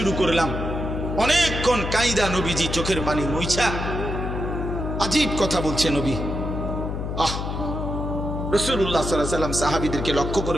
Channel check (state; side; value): noise; left; hum, 4 dB below the sound